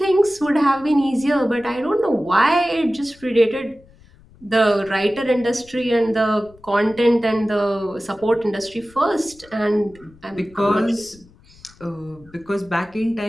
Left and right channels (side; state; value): left; noise; rumble, 26 dB below the sound